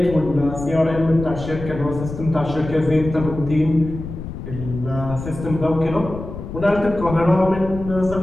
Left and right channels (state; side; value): noise; left; rumble, 9 dB below the sound